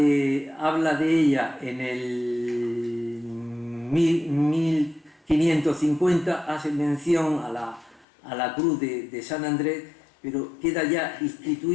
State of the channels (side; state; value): right; drops out; at 8.1 s